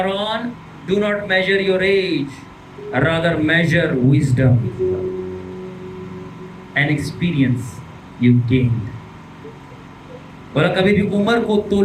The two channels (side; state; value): both; identical; correlation 1.00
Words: do not measure your age, rather measure wisdom and experience you gained. बोला कभी भी उम्र को